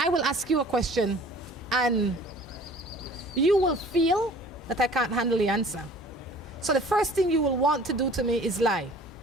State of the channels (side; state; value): both; normal; correlation 0.48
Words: will ask you a question and you will feel that I can't handle the answer. So the first thing you will want to do to me is lie,